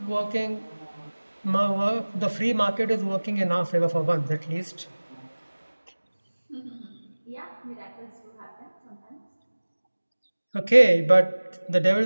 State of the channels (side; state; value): both; inverted; correlation -1.00